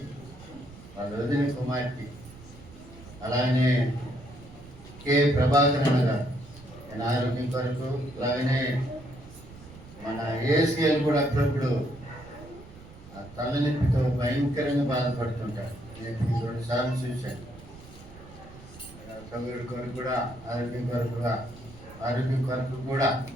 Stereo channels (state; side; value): noise; right; rumble, 18 dB below the sound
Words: వాళ్ళ వదిన కుమార్తె, అలాగనే కె ప్రభాకరణ గారు నేను ఆరోగ్యం కొరకు, అలాగనే మన ఏసీఎల్ కూడా అప్పుడప్పుడు ఆ తలనొప్పితో భయంకరంగా బాధపడుతుంటారు. నేను 2 సార్లు చూశాను. సౌకర్యం కొరకు కూడా ఆరోగ్యం కొరకు కూడా